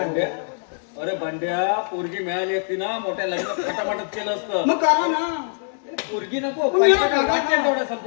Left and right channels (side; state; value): right; silent; digital silence